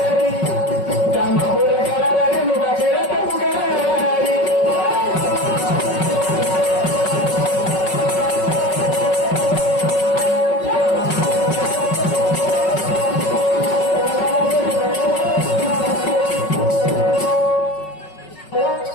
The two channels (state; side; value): late; right; 5.4 ms